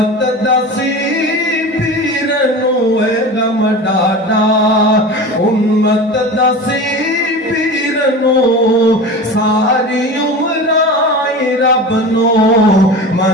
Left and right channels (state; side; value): normal; both; correlation 0.32